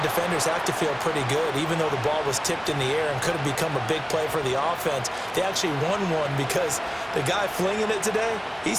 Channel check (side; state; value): both; identical; correlation 1.00